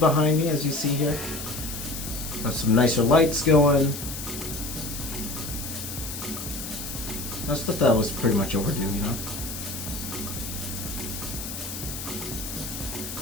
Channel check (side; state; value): left; noise; hiss, 8 dB below the sound